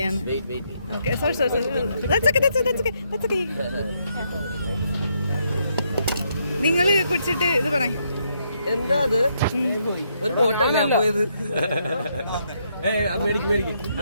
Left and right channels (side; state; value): both; inverted; correlation -0.76